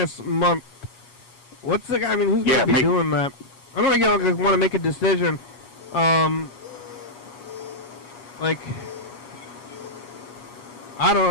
Month. What's the guy? I mean, who's gonna be doing that? I don't think want to make a decision. Like, I don't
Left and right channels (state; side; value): late; right; 8.3 ms